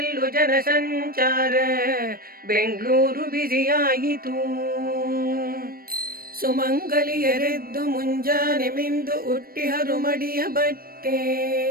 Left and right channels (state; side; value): late; left; 0.43 ms